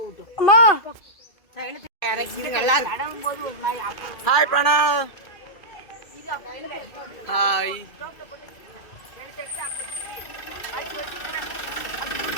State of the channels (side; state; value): right; late; 2.2 ms